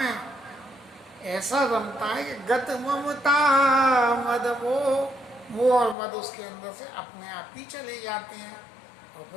ऐसा रमता है कि गत ममता मद वो और मद उसके अंदर से अपने आप ही चले जाते हैं। और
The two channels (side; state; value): right; drops out; at 6.0 s